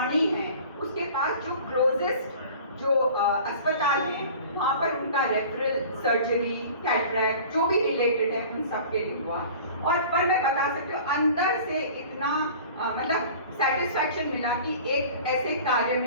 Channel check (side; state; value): both; inverted; correlation -0.43